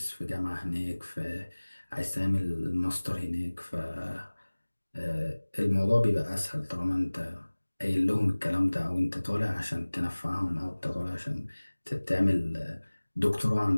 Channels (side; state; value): both; inverted; correlation -1.00